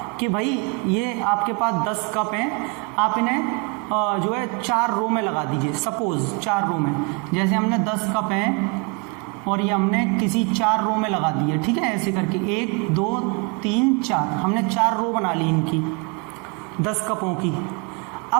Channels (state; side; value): quieter; left; 29.6 dB